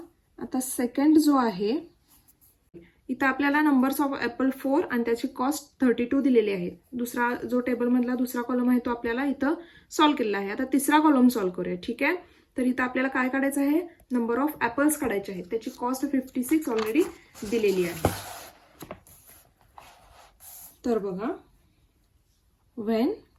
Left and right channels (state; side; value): identical; both; correlation 1.00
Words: आता सेकंड जो आहे, इथं आपल्याला नंबर्स ऑफ ॲपल 4 आणि त्याची कॉस्ट 32 दिलेली आहे. दुसरा जो टेबलमधला दुसरा कॉलम आहे तो आपल्याला इथं सॉल्व्ह केलेला आहे. आता तिसरा कॉलम सॉल्व्ह करूया. ठीक आहे, तर इथं आपल्याला काय काढायचं आहे, नंबर ऑफ ॲपल्स काढायचे आहेत. त्याची कॉस्ट 56 ऑलरेडी दिलेली आहे. तर बघा, व्हेन